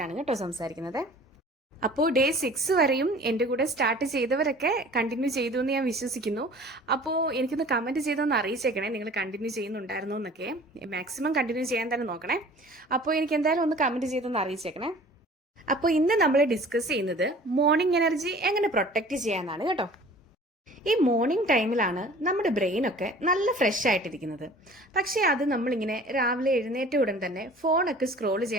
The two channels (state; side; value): normal; both; correlation 0.46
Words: കേട്ടോ സംസാരിക്കുന്നത്. അപ്പോൾ ഡേ 6 വരെയും എൻ്റെ കൂടെ സ്റ്റാർട്ട് ചെയ്തവരൊക്കെ കണ്ടിന്യൂ ചെയ്തു എന്ന് ഞാൻ വിശ്വസിക്കുന്നു. അപ്പോൾ എനിക്കൊന്ന് കമൻറ്റ് ചെയ്തൊന്ന് അറിയിച്ചേക്കണേ, നിങ്ങൾ കണ്ടിന്യൂ ചെയ്യുന്നുണ്ടായിരുന്നോ എന്നൊക്കെ. മാക്സിമം കണ്ടിന്യൂ ചെയ്യാൻ തന്നെ നോക്കണേ. അപ്പോൾ എനിക്ക് എന്തായാലും ഒന്ന് കമൻറ്റ് ചെയ്തൊന്ന് അറിയിച്ചേക്കണേ. അപ്പോൾ ഇന്ന് നമ്മൾ ഡിസ്കസ് ചെയ്യുന്നത് മോർണിംഗ് എനർജി എങ്ങനെ പ്രൊട്ടക്റ്റ് ചെയ്യാനാണ് കേട്ടോ. ഈ മോർണിംഗ് ടൈമിലാണ് നമ്മുടെ ബ്രെയിനൊക്കെ നല്ല ഫ്രഷ് ആയിട്ടിരിക്കുന്നത്. പക്ഷേ അത് നമ്മളിങ്ങനെ രാവിലെ എഴുന്നേറ്റ ഉടൻ തന്നെ ഫോണൊക്കെ സ്ക്രോൾ